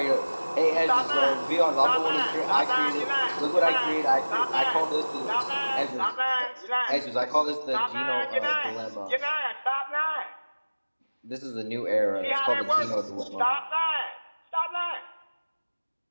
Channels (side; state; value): both; inverted; correlation -1.00